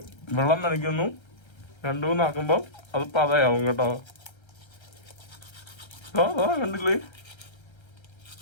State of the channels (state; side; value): late; right; 1.3 ms